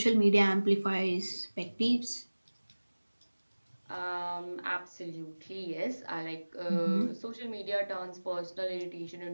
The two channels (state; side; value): inverted; both; correlation -1.00